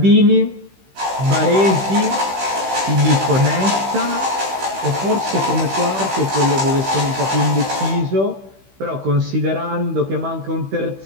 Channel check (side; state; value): left; late; 15 ms